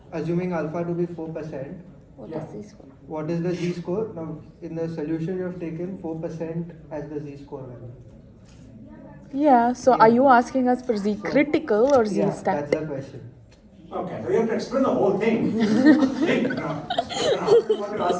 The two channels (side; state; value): both; identical; correlation 1.00